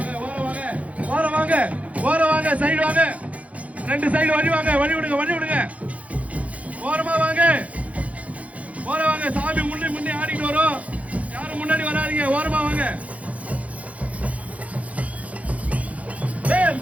ஓரம் வாங்க, ஓரம் வாங்க, ஓரம் வாங்க. சைடு வாங்க, ரெண்டு சைடு வழி வாங்க. வழி விடுங்க, வழி விடுங்க. ஓரமா வாங்க, ஓரம் வாங்க. சாமி முன்னே முன்னே ஆடிட்டு வரும். யாரும் முன்னாடி வராதீங்க. ஓரமா வாங்க. வேல்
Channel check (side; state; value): left; late; 0.067 ms